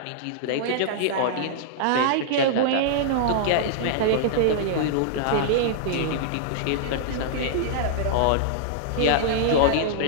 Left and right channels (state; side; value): different; both; correlation -0.02